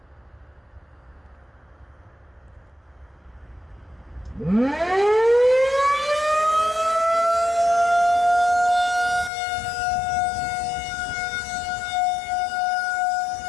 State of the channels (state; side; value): drops out; right; at 9.3 s